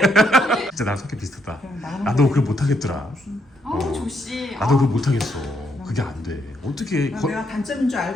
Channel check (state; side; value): normal; both; correlation 0.76